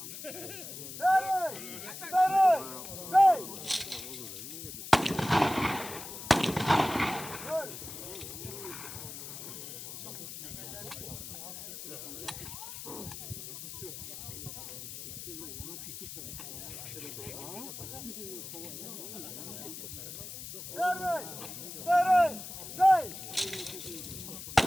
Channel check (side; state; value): left; noise; hiss, 9 dB below the sound